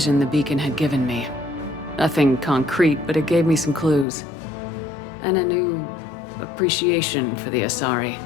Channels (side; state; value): right; drops out; at 4.0 s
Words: the beacon had given me. Nothing concrete, but it gave me some clues. And a new appreciation for the Asari.